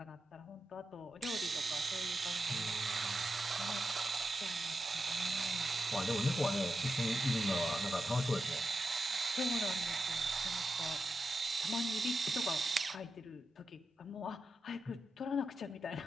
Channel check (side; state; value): both; normal; correlation 0.89